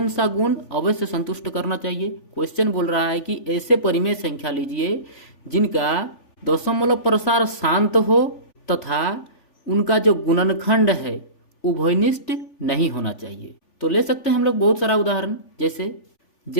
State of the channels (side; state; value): right; late; 3.4 ms